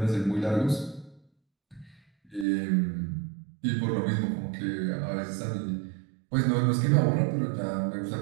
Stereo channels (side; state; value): left; drops out; at 2.5 s